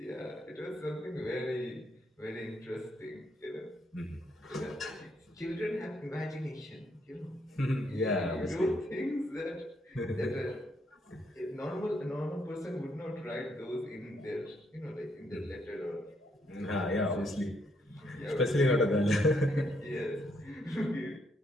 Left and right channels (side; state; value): both; normal; correlation 0.74